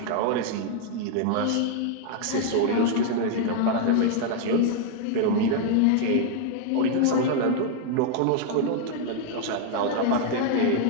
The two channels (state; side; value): different; both; correlation 0.00